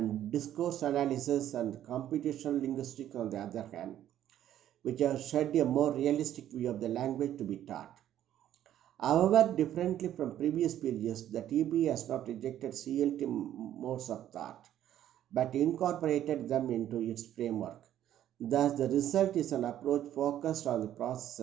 discourse analysis and computational linguistics on the other hand, which have shed a more realistic view of the language to be taught. However, differently from previous periods, the TB has not rejected CLT modes of thought, but incorporated them into its framework. Thus, the result is an approach focused on the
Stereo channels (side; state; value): left; quieter; 11.6 dB